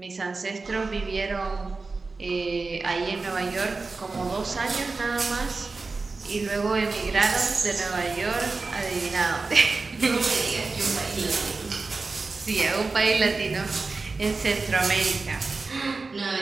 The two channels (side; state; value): left; quieter; 3.9 dB